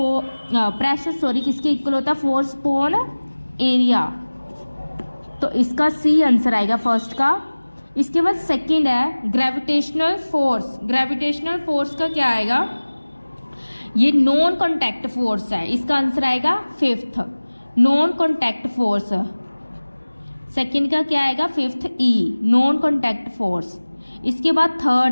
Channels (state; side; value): inverted; both; correlation -1.00